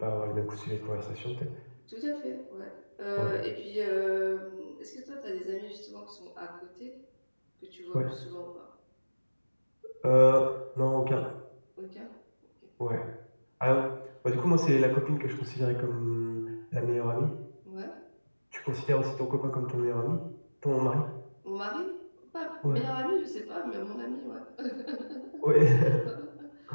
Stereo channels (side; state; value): both; inverted; correlation -1.00